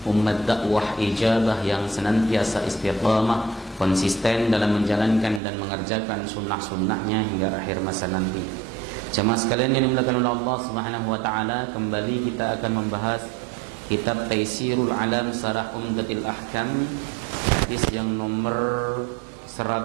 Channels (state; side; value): drops out; left; at 5.4 s